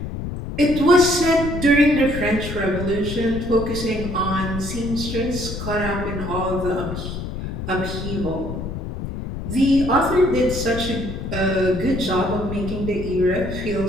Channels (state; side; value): noise; left; rumble, 6 dB below the sound